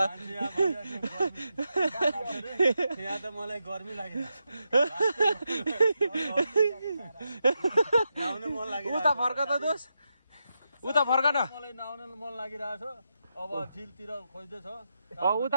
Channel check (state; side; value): inverted; both; correlation -0.86